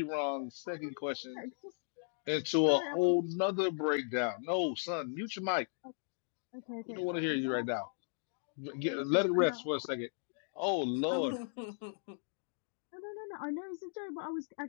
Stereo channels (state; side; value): silent; right; digital silence